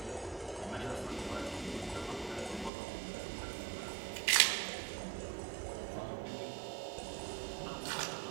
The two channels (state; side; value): drops out; left; at 2.7 s